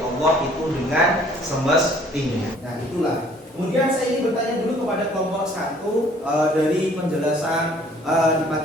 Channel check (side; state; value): both; normal; correlation 0.57